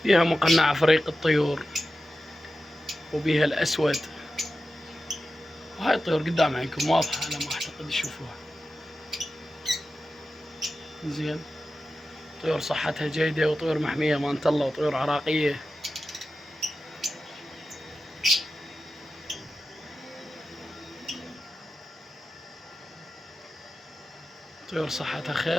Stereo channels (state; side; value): normal; both; correlation 0.92